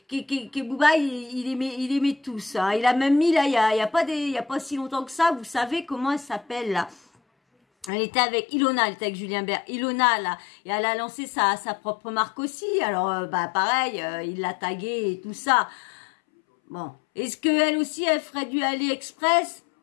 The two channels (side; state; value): right; drops out; at 7.9 s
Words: Booba, il aimait tous. Hein. Il a même mis, là, il y a pas si longtemps que ça, vous savez comment elle s'appelle, là. Elle était avec Ilona, elle était avec Julien Bert. Ilona, là, et elle a lancé sa propre marque aussi. Alors, bah, pareil, il l'a taguée et tout ça. Bon. Est-ce qu'elle aussi, elle ferait du AliExpress?